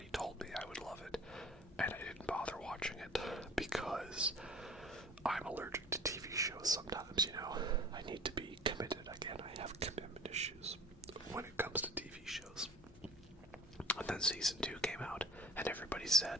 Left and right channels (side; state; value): both; normal; correlation 0.44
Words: told me I would love it, and I didn't bother watching it because I'm allergic to TV shows sometimes, you know. I need to be committed. Again, I have commitment issues when it comes to TV shows. And then season 2 came out, and everybody